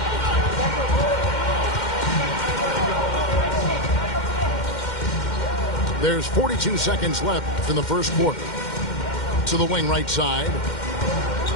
There's 42 seconds left in the first quarter. To the wing right side.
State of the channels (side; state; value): right; late; 2.1 ms